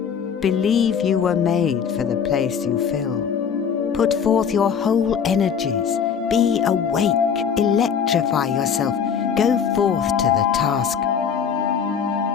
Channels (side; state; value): right; quieter; 7.2 dB